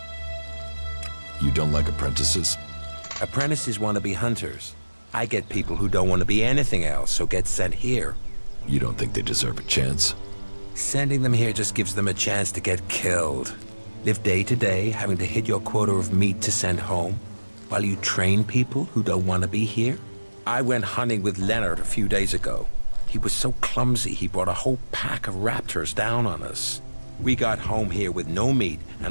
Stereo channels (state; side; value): inverted; both; correlation -1.00